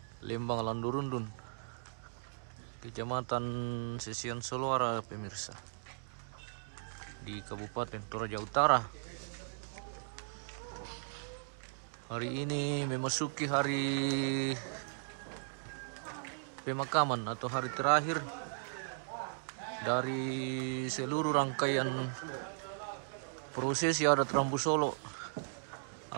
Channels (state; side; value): silent; left; digital silence